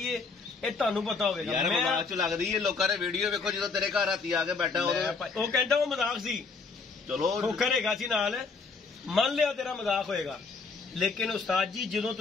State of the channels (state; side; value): quieter; right; 4.6 dB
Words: ਇਹ ਤੁਹਾਨੂੰ ਪਤਾ ਹੋਵੇਗਾ। ਯਾਰ ਮਜ਼ਾਕ ਚ ਲੱਗਦੀ ਹੈ, ਲੋਕਾਂ ਨੇ ਵੀਡੀਓ ਵੇਖੋ ਜਦੋਂ ਤੇਰੇ ਘਰ ਰਾਤੀ ਆ ਕੇ ਬੈਠਾ ਉਹ ਕਹਿੰਦਾ ਉਹ ਮਜ਼ਾਕ ਸੀ, ਚਲੋ ਖੋਖਰ ਹੈਗਾ ਸੀ ਨਾਲ, ਮੰਨ ਲਿਆ ਤੇਰਾ ਮਜ਼ਾਕ ਹੋਏਗਾ। ਲੇਕਿਨ ਉਸਤਾਦ ਜੀ ਜਦੋਂ